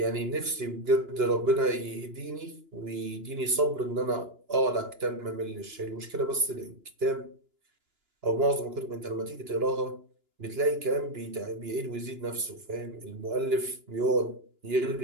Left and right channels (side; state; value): left; late; 2.9 ms